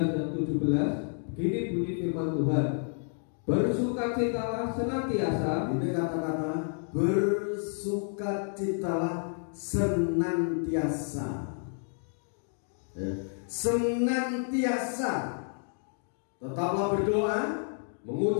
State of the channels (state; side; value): silent; right; 58 dB below the other